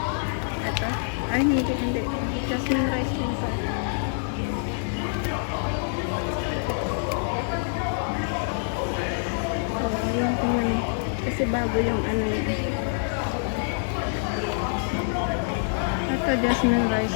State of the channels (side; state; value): right; silent; 61 dB below the other